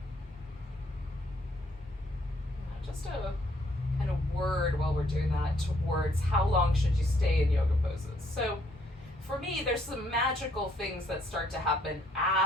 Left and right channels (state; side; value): normal; both; correlation 0.68